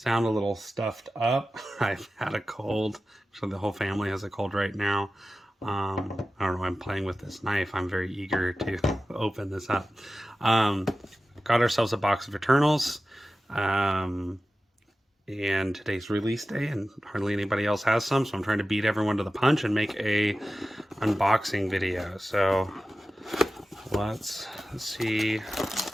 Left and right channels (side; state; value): both; normal; correlation 0.94